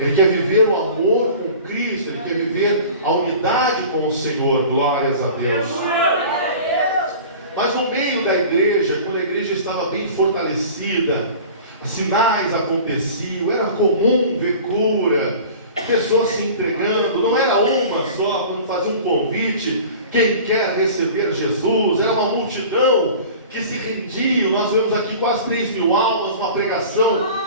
quer viver o amor com Cristo, ele quer viver a unidade com o Senhor. Glórias a Deus. Mas no meio da igreja, quando a igreja estava bem fortalecida, sinais aconteciam, era comum ver cura, pessoas se entregando. Não era uma só, quando fazia um convite, quem quer receber Jesus, era uma multidão que se rendia. Nós vemos aqui quase 3.000 almas, uma pregação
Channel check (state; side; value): inverted; both; correlation -0.41